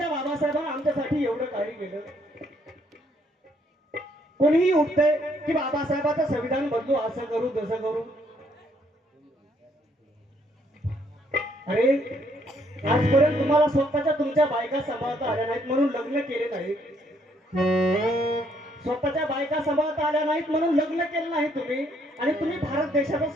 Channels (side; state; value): both; normal; correlation 0.69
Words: बाबासाहेबांना आमच्यासाठी एवढं काही केलं. कोणीही उठतंय की बाबासाहेबांचं संविधान बदलू, असं करू तसं करू. अरे आजपर्यंत तुम्हाला स्वतःच्या तुमच्या बायका सांभाळता आल्या नाहीत म्हणून लग्न केले नाहीत. स्वतःच्या बायका सांभाळता आल्या नाहीत म्हणून लग्न केलं नाही तुम्ही. आणि तुम्ही भारत देशाचं